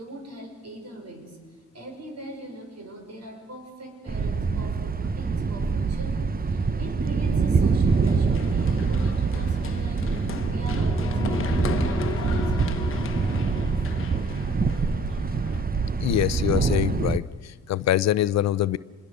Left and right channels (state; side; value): normal; both; correlation 0.59